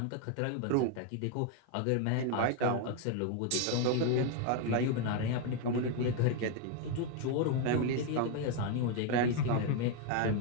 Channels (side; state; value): both; different; correlation 0.01